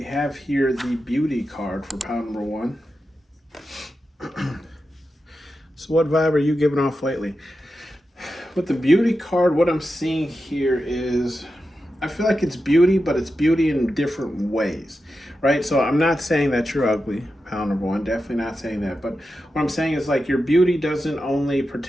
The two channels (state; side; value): normal; both; correlation 0.90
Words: have here the beauty card for pound number one. So, what vibe are you giving off lately? With the beauty card, what I'm seeing here is I feel like it's beauty, but it's beauty in different ways, right? So I'm not saying that you're ugly, pound number one, definitely not saying that. But what I'm saying is like your beauty doesn't only